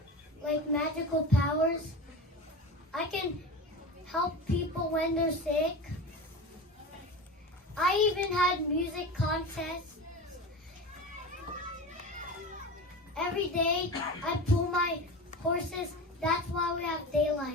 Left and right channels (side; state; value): both; normal; correlation 0.29